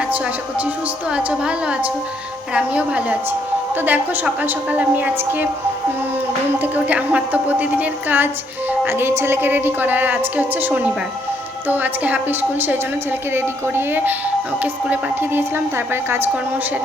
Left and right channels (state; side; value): normal; both; correlation 0.71